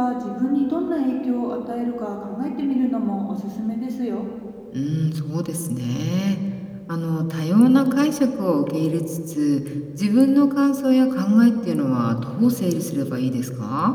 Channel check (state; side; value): identical; both; correlation 1.00